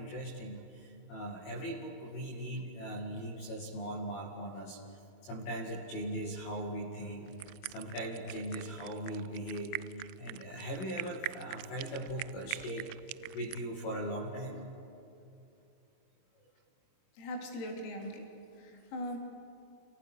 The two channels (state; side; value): late; right; 21 ms